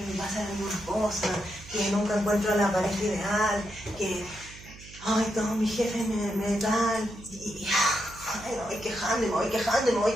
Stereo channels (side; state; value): right; noise; hum, 18 dB below the sound